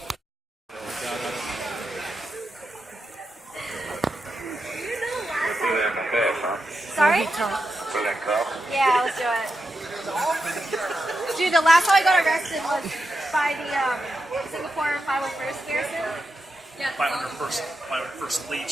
Sorry? Yeah, let's do it. Dude, the last time I got arrested was by the Singapore 501st garrison. Yeah. 501st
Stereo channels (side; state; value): both; normal; correlation 0.87